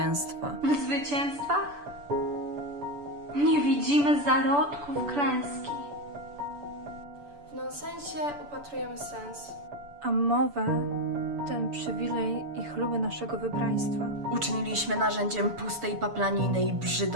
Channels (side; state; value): left; late; 6.9 ms